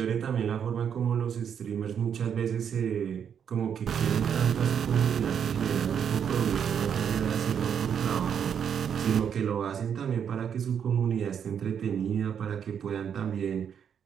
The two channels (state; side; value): quieter; left; 8.0 dB